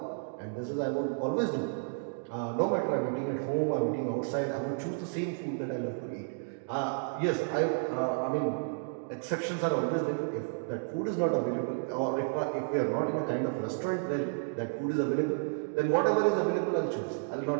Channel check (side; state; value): left; silent; digital silence